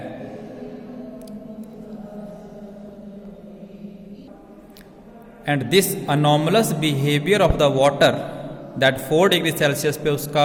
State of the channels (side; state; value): both; identical; correlation 1.00